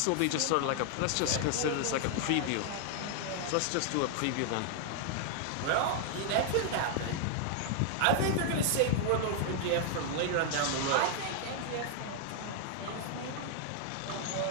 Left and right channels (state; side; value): different; both; correlation 0.00